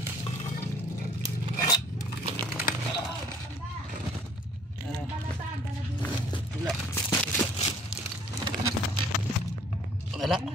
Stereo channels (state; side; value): normal; both; correlation 0.56